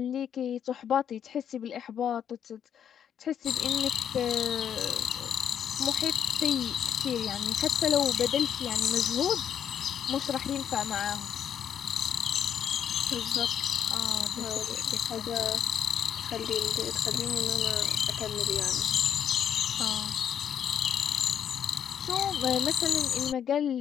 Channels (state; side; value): quieter; right; 8.9 dB